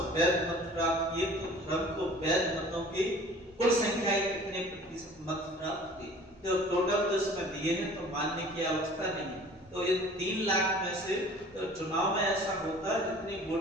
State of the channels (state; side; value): noise; right; rumble, 29 dB below the sound